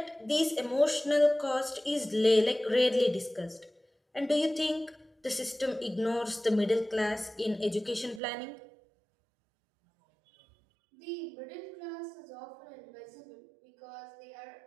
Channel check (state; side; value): drops out; left; at 8.2 s